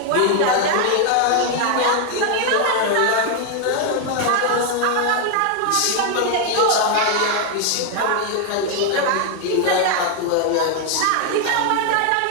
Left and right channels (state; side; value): different; both; correlation 0.01